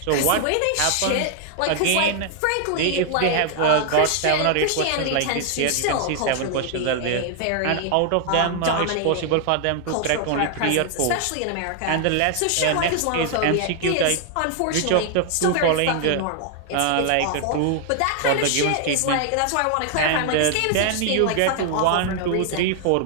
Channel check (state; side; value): different; both; correlation 0.00